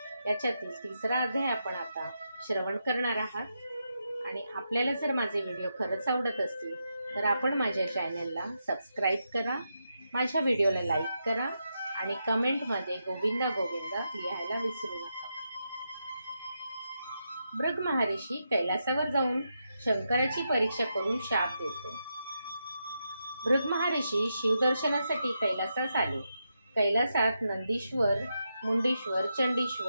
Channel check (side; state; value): both; inverted; correlation -0.85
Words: याच्यातील तिसरा अध्याय आपण आता श्रवण करणार आहात। आणि आपल्याला जर माझे व्हिडिओ खरंच आवडत असतील तर आपण माझ्या चॅनलला सबस्क्राईब करा, माझ्या व्हिडिओला लाईक करा आणि कमेंटमध्ये गोविंदा गोविंदा लिहायला विसरू नका। भृग महर्षी कैलासावर जाऊन शंकराची परीक्षा करून शाप देतो। भृग महर्षी शिवदर्शनासाठी कैलासास आले। कैलासात नंदीश्वर, मुंडीश्वर,